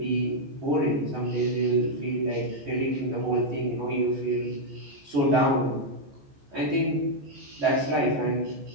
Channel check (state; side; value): late; left; 14 ms